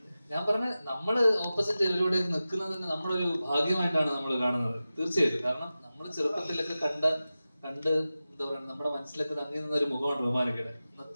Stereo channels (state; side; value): inverted; both; correlation -0.95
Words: ഞാൻ പറഞ്ഞ, നമ്മള് ഓപ്പോസിറ്റ് ഇവരോട് നിൽക്കുന്നത് തന്നെ നമ്മളൊരു ഭാഗ്യമായിട്ടാണ് നമ്മൾ കാണുന്നത് തീർച്ചയായിട്ടും. കാരണം നമ്മൾ ചെറുപ്പത്തിലൊക്കെ കണ്ട് എന്താ പറയുക, നമ്മുടെ മനസ്സിലൊക്കെ തങ്ങി നിന്ന ഒരു മുഖമാണ് റൊമാനിക്കയുടെ.